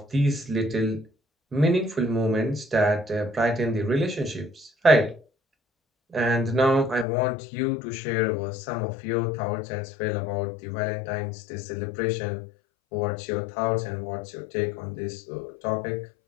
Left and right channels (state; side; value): drops out; right; at 7.1 s